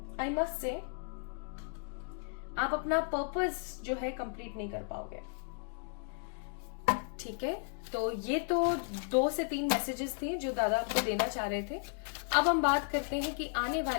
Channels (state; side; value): silent; right; 55 dB below the other